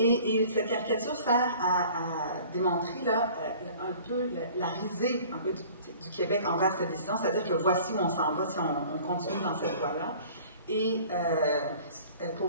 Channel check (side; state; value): both; inverted; correlation -0.48